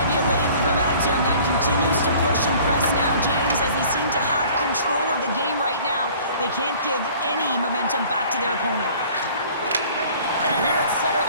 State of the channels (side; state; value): both; inverted; correlation -0.50